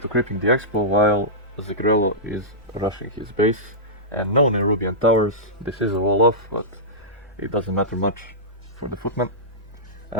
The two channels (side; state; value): both; normal; correlation -0.14